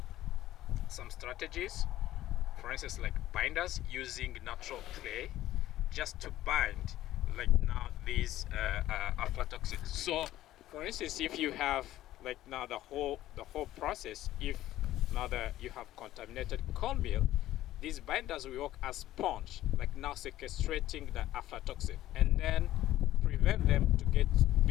some strategies, for instance, like binders using natural clay, just to bind like now these aflatoxins. So for instance, if you have like now the whole process, if now that you have contaminated cornmeal, these binders will work as sponge, like now sequestrating the aflatoxin, and then prevent them to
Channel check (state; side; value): quieter; right; 14.3 dB